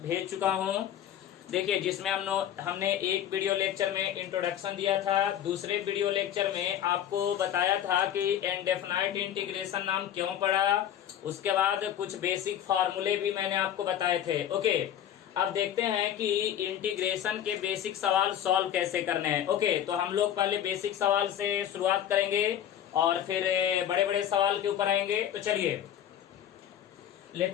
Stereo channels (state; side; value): quieter; right; 10.5 dB